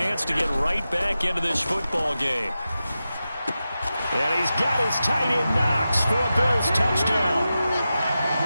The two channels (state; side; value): inverted; both; correlation -0.92